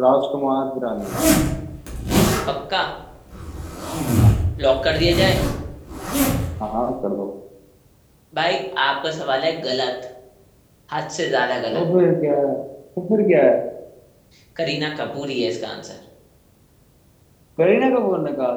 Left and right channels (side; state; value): both; identical; correlation 1.00